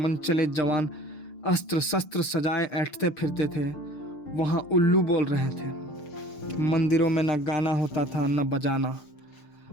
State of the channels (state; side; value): late; right; 6.6 ms